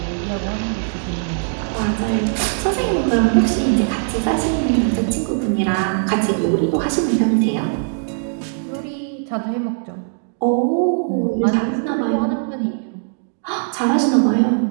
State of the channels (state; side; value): silent; left; digital silence